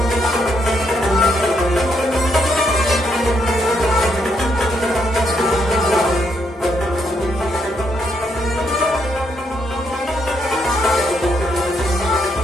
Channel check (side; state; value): both; normal; correlation 0.76